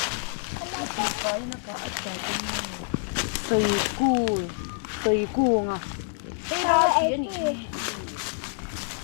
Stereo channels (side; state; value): right; silent; digital silence